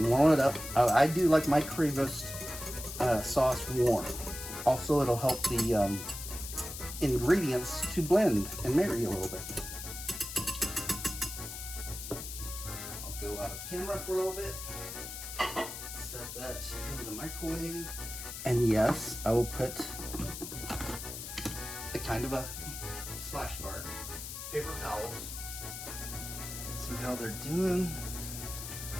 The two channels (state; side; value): noise; left; hiss, 8 dB below the sound